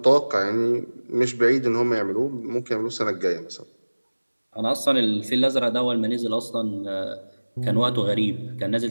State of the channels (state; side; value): inverted; both; correlation -1.00